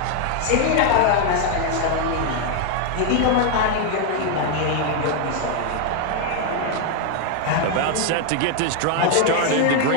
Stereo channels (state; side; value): different; both; correlation 0.00